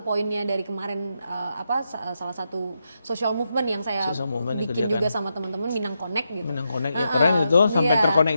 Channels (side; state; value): both; inverted; correlation -0.84